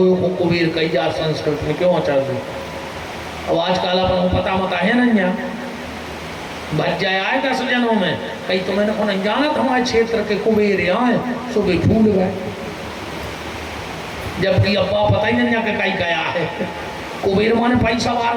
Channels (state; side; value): identical; both; correlation 1.00